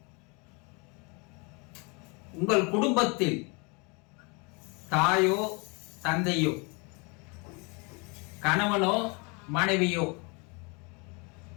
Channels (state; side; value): quieter; right; 30.9 dB